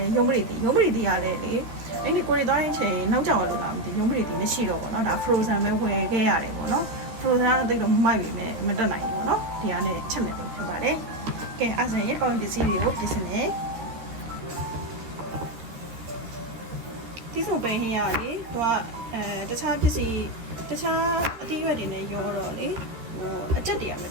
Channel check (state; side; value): late; left; 13 ms